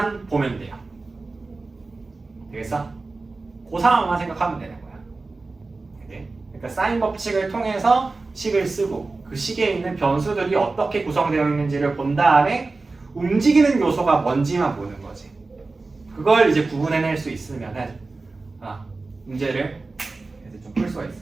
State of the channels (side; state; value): left; quieter; 3.6 dB